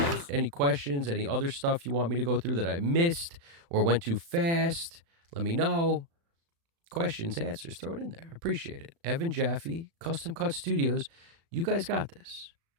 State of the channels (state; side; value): late; left; 36 ms